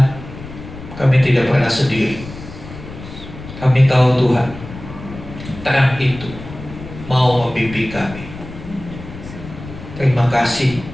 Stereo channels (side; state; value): left; noise; rumble, 13 dB below the sound